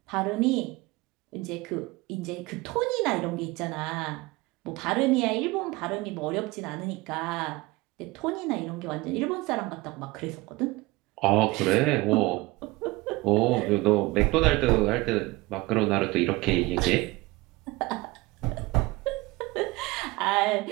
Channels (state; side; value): quieter; left; 21.6 dB